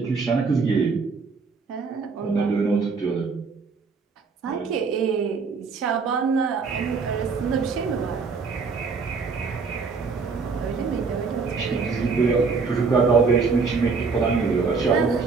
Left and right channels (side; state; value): left; quieter; 4.8 dB